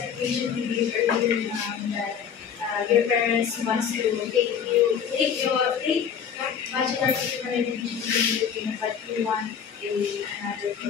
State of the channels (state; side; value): quieter; right; 7.6 dB